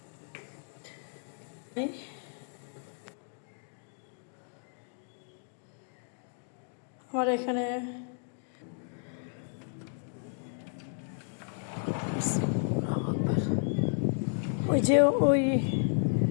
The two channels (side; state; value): right; silent; digital silence